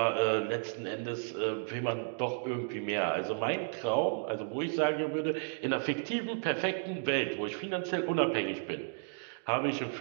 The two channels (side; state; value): left; silent; digital silence